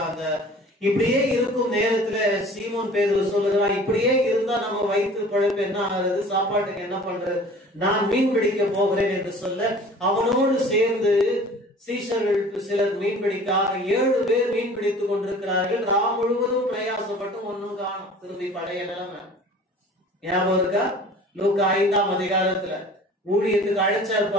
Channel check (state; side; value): normal; both; correlation 0.46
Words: இப்படியே இருக்கும் நேரத்துல சீமோன் பேதுரு சொல்லுகிறான், இப்படியே இருந்தா நம்ம வயிற்று பழப்பு என்ன ஆகுறது, சாப்பாட்டுக்கு என்ன பண்றது, நான் மீன் பிடிக்க போகிறேன் என்று சொல்ல அவனோடு சேர்ந்து சீஷர்களுக்கு சிலர் மீன் பிடிக்காக 7 பேர் மீன் பிடித்துக் கொண்டிருக்கிறார்கள். ராம் முழுவதும் பிரயாசப்பட்டு ஒன்னும் காணும். திரும்பி பழைய நிலைமை ஞாபகம் இருக்கா? லூக்கா 5ஆம் அதிகாரத்துல ஊழியத்துக்கு அழைச்சா